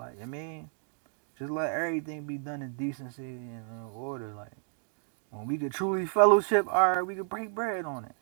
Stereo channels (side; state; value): left; silent; 57 dB below the other